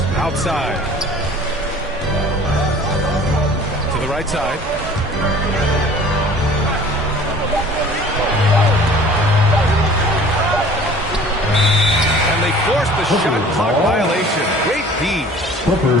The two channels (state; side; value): normal; both; correlation 0.48